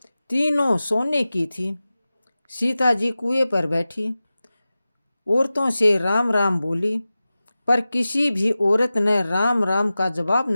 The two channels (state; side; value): inverted; both; correlation -0.95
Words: तीनों सोने की थी। सीता जी कुएं पर बैठी, औरतों से राम राम बोली, पर किसी भी औरत ने राम राम का जवाब